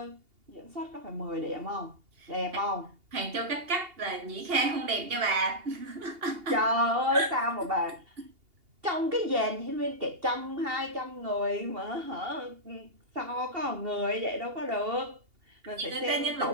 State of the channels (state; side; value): late; left; 2.8 ms